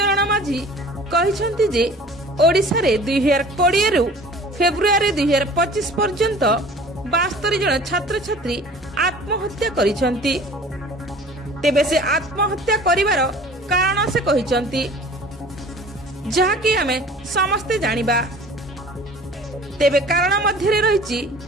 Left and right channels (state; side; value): normal; both; correlation 0.46